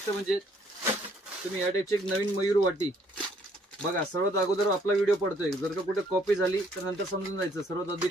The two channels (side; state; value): both; normal; correlation 0.65